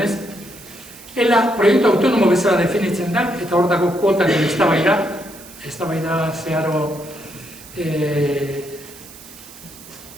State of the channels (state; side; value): noise; right; hiss, 19 dB below the sound